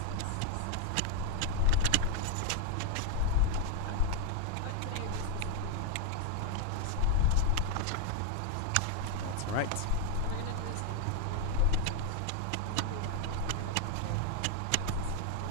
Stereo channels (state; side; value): different; both; correlation 0.01